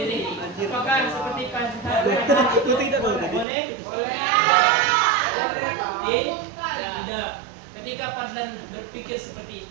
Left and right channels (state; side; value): drops out; left; at 3.5 s